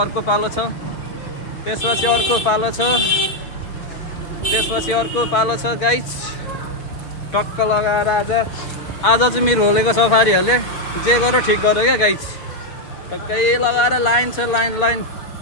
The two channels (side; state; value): right; late; 6.2 ms